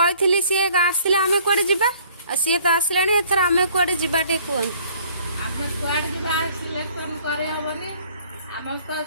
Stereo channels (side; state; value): both; inverted; correlation -0.58